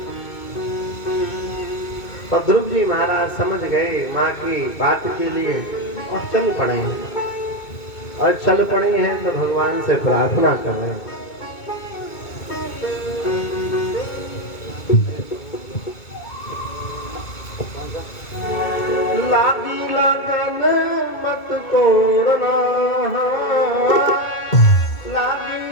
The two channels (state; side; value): late; right; 2.2 ms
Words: और ध्रुव जी महाराज समझ गए माँ की बात के लिए और चल पड़े हैं। और चल पड़े हैं तो भगवान से प्रार्थना कर रहे हैं। लागी लगन मत तोड़ना, लागी